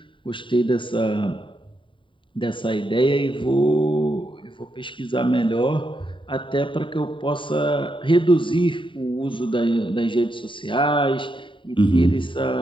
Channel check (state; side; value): late; right; 0.24 ms